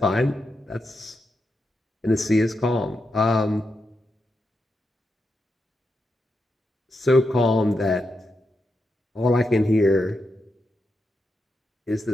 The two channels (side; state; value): both; normal; correlation 0.86